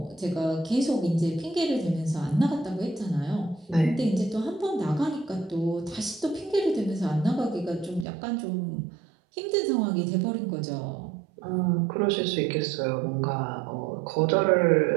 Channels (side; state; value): left; drops out; at 8.1 s